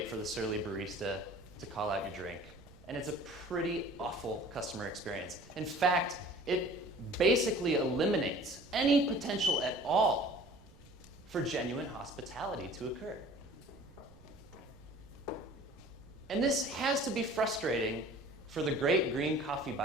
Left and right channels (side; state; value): right; noise; rumble, 23 dB below the sound